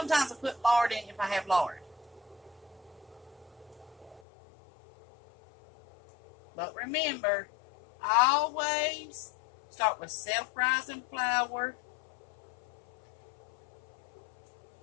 I put lard in if I have lard. But remember, always start with self-rising flour,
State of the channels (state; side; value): drops out; right; at 4.2 s